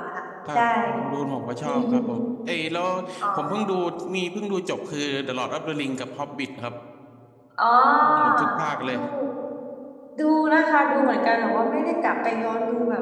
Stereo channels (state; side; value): identical; both; correlation 1.00